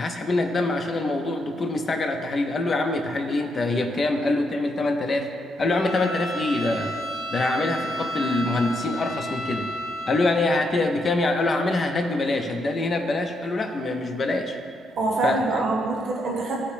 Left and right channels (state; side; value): normal; both; correlation 0.79